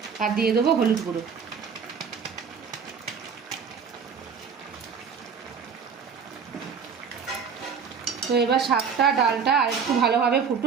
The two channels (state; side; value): quieter; left; 6.3 dB